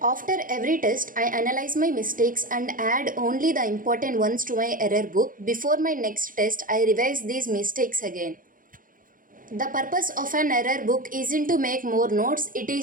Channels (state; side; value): late; left; 0.40 ms